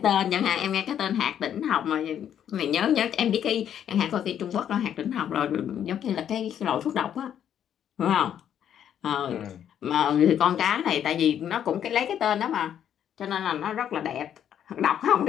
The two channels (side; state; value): right; quieter; 9.6 dB